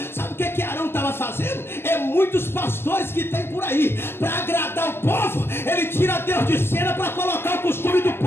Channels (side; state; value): right; late; 0.11 ms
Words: Sabe o que Arão estava fazendo? É muitos pastores que tem por aí, para agradar o povo, ele tira Deus de cena para colocar o costume do